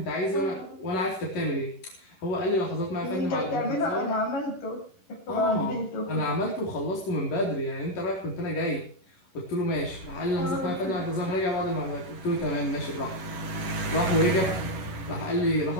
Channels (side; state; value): right; late; 11 ms